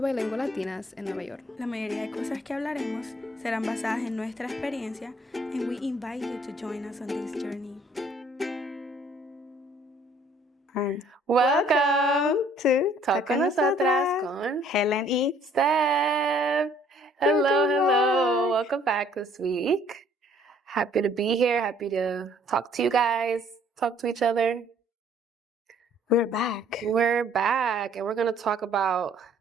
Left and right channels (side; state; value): both; normal; correlation 0.60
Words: latinas en Nueva York. La mayoría de cosas que hablaremos serán basadas en nuestra experiencia, and we invite you to join us on this journey. Welcome to Talk con Nosotras con Helen y Steph. Hello. Welcome back this week. Happy to be here. Happy to talk to you guys, talk to each other. We're back. We're back, and we're going to talk about